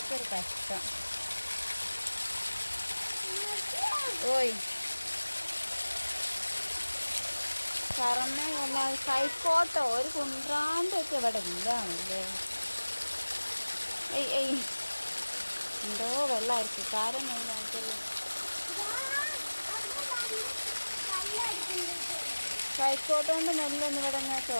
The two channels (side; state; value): both; inverted; correlation -1.00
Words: കഷ്ടം. ഓയ് തറന്നെ കൈക്കോട്ടോ ഒരു കുന്ത്രാൻ്റെ ഒക്കെ ഇവിടെ ഇല്ലാണല്ലേ. എന്തോ വെള്ളമായിരിക്കും കാരം മെയിനായിട്ടുള്ള. കൈക്കോട്ട് കൊണ്ട് നെല്ലൊന്നും ഇവിടെ ഞാൻ